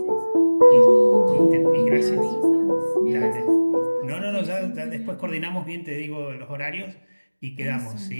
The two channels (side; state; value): both; inverted; correlation -1.00